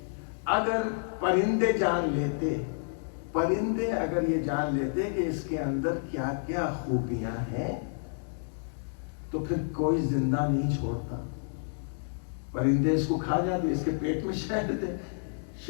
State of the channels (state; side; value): silent; right; digital silence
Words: اگر پرندے جان لیتے, پرندے اگر یہ جان لیتے کہ اس کے اندر کیا کیا خوبیاں ہیں, تو پھر کوئی زندہ نہیں چھوڑتا. پرندے اس کو کھا جاتے, اس کے پیٹ میں شہد ہے,